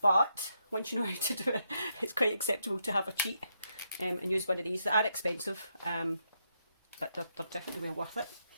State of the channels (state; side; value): inverted; both; correlation -0.80